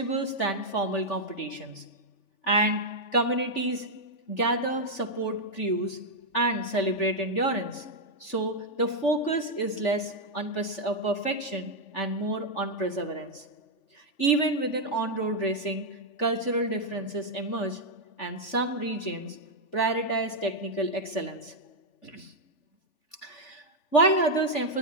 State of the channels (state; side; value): late; right; 3.4 ms